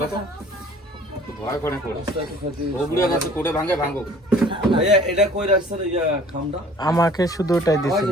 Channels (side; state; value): both; normal; correlation 0.51